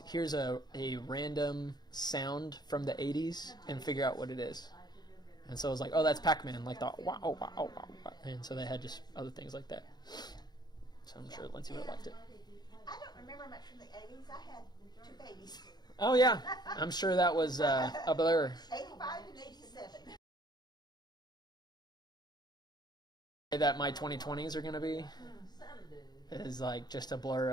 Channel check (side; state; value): right; late; 0.20 ms